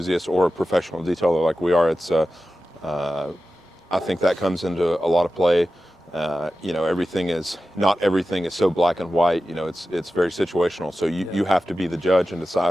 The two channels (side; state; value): both; normal; correlation 0.94